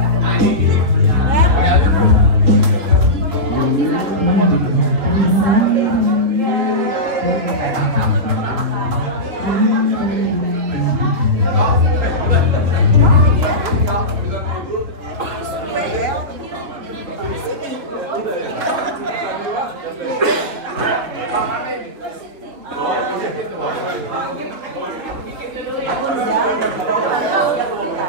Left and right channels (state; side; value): late; left; 3.0 ms